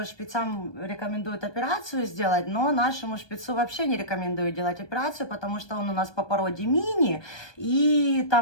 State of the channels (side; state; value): right; late; 1.2 ms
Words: шпицам рекомендуют операцию сделать, но нашему шпицу вообще не рекомендую делать операцию, потому что он у нас по породе мини, и